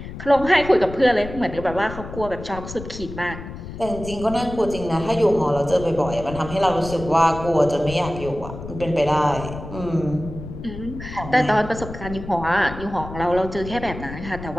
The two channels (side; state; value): left; noise; rumble, 11 dB below the sound